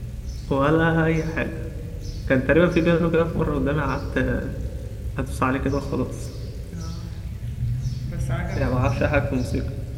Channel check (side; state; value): both; identical; correlation 1.00